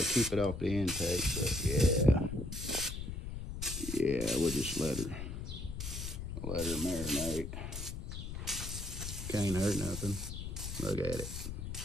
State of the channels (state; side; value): noise; left; rumble, 6 dB below the sound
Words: keep it off the intake, but yeah, we'll just let her marinate. Can't hurt nothing. Look at it.